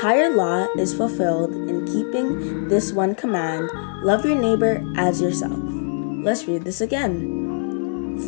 law is fulfilled in keeping this one command, love your neighbor as yourself. Let's read this again.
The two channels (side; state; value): right; silent; digital silence